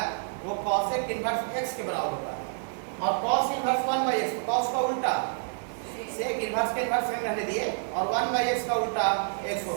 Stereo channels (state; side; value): silent; left; digital silence